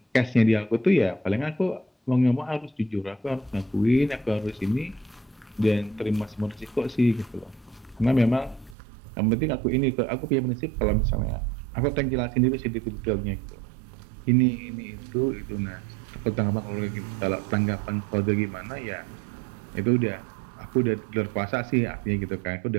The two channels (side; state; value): left; drops out; at 8.8 s